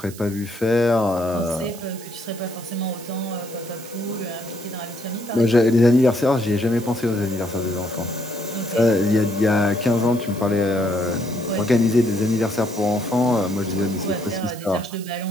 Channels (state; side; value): noise; right; hiss, 17 dB below the sound